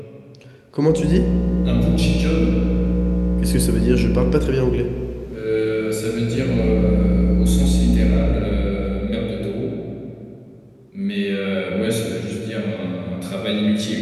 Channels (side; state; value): both; identical; correlation 1.00